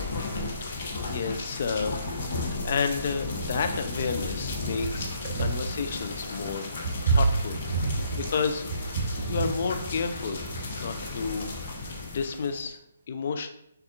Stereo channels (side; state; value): both; inverted; correlation -0.67